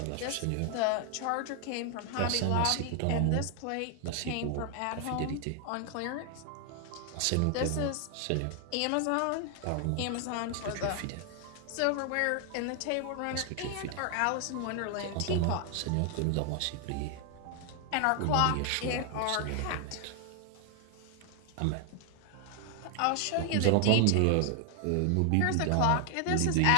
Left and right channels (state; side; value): different; both; correlation 0.00